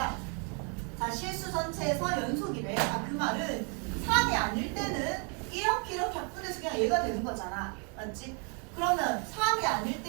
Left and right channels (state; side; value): quieter; left; 37.1 dB